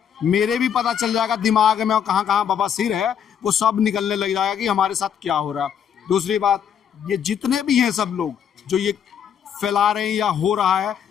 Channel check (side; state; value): right; quieter; 8.4 dB